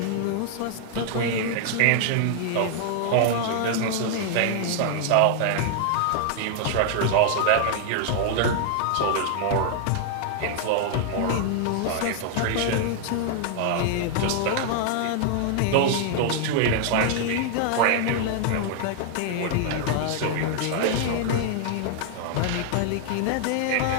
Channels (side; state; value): both; different; correlation 0.00